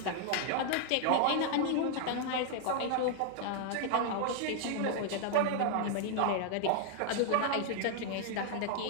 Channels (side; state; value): both; different; correlation 0.00